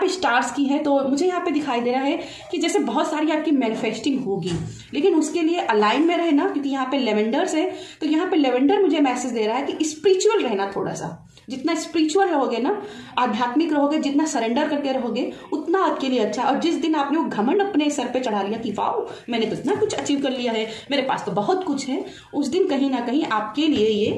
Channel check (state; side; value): identical; both; correlation 1.00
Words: स्टार्स की है तो मुझे यहाँ पे दिखाई दे रहा है कि जैसे बहुत सारी आपकी मैनिफेस्टिंग होगी, लेकिन उसके लिए अलाइन में रहना, क्योंकि यहाँ पे लेवेंडर्स है, तो यहाँ पे लेवेंडर मुझे मैसेज दे रहा है कि स्पिरिचुअल रहना थोड़ा सा। जितना स्पिरिचुअल रहोगे ना, आध्यात्मिक रहोगे, जितना सरेंडर करके रहोगे, उतना आपके लिए अच्छा। और जिस दिन आपने वो घमंड अपने सर पे चढ़ा लिया कि वाओ मैंने तो इतना कुछ अचीव कर लिया है, मेरे पास तो बहुत कुछ है, उस दिन कहीं ना कहीं आपके लिए